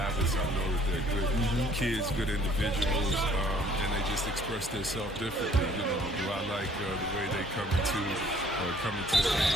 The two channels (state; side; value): normal; both; correlation 0.58